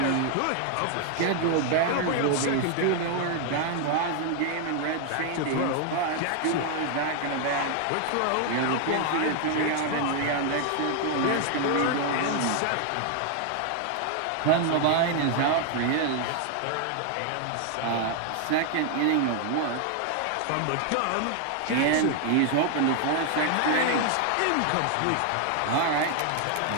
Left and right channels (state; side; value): different; both; correlation 0.00